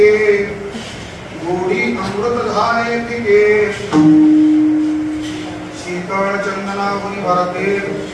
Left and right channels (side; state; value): both; identical; correlation 1.00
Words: गोडी अमृत धारे तिके शीतल चंदना मुनि भरते